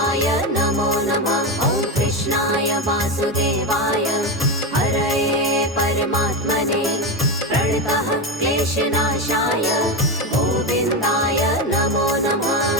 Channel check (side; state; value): both; normal; correlation 0.15